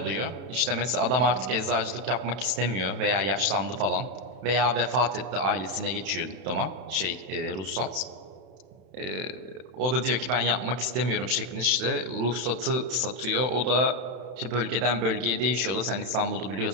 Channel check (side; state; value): left; late; 31 ms